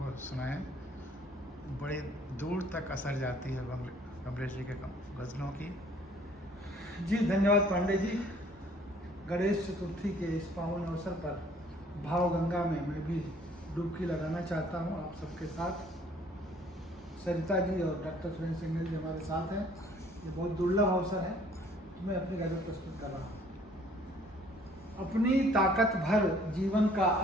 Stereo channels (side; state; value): both; normal; correlation 0.58